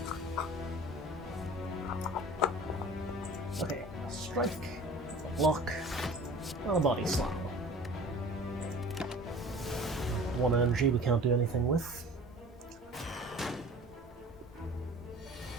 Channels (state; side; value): normal; both; correlation 0.43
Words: Okay, a strike, a block, and a body slam. 1 energy we can't do anything with.